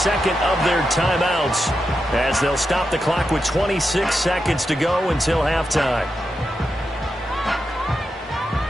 of their timeouts as they'll stop the clock with 26 seconds to go until halftime.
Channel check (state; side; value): normal; both; correlation 0.87